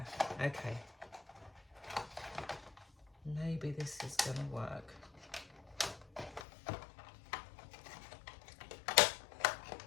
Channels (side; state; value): right; drops out; at 6.5 s